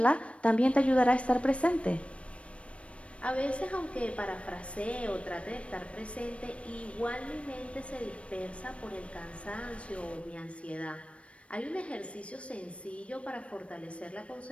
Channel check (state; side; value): late; right; 0.062 ms